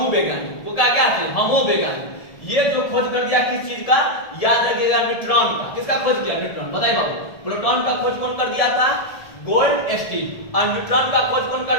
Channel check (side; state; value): right; late; 1.7 ms